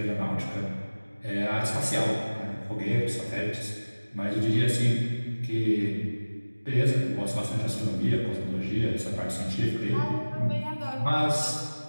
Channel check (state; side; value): inverted; both; correlation -1.00